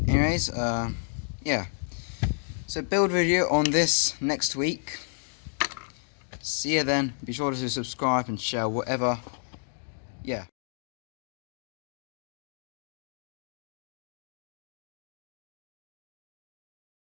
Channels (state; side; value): silent; right; digital silence